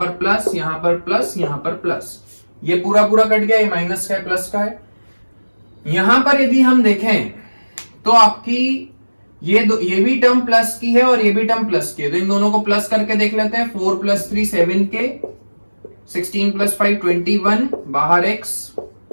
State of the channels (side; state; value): both; inverted; correlation -1.00